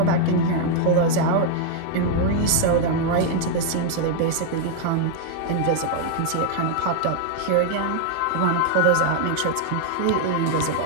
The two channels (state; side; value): different; both; correlation 0.00